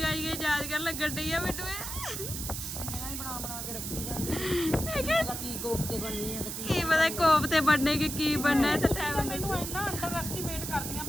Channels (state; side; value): noise; right; hiss, 5 dB below the sound